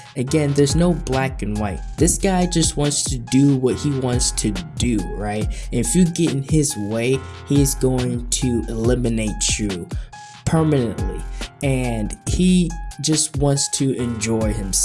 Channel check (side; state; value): both; identical; correlation 1.00